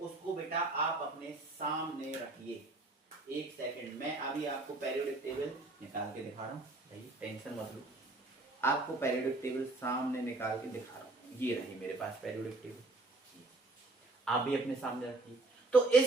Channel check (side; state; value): left; quieter; 3.1 dB